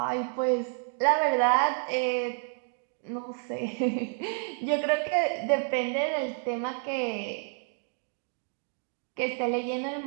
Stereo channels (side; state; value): left; silent; 58 dB below the other